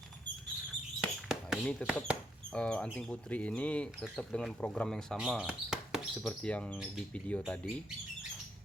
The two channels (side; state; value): both; normal; correlation 0.74